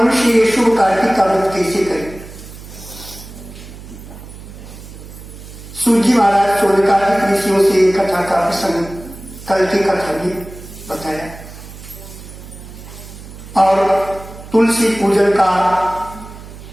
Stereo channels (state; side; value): noise; right; hum, 15 dB below the sound